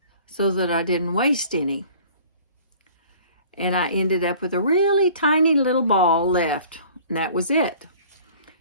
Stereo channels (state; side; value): inverted; both; correlation -0.49